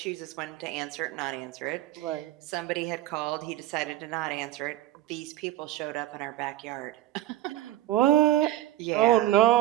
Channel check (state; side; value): quieter; left; 14.3 dB